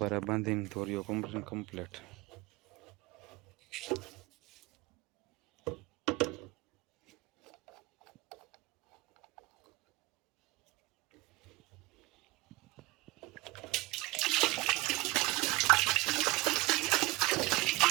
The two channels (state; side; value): quieter; left; 21.7 dB